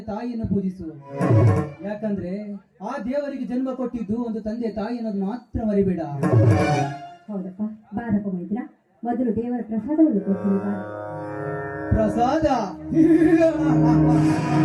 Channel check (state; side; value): identical; both; correlation 1.00